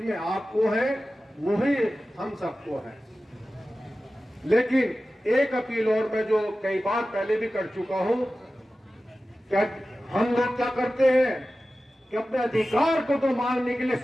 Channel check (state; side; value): normal; both; correlation 0.95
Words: आपको है वही हम सबको है। लेकिन एक अपील और मैं जो कई बार पहले भी कर चुका हूं, क्या हम लोग क्या करते हैं कि अपने अधिकार को तो मांगने के लिए